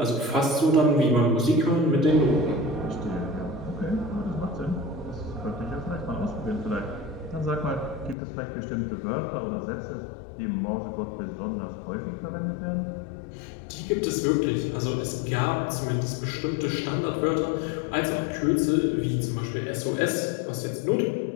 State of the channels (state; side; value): drops out; right; at 8.2 s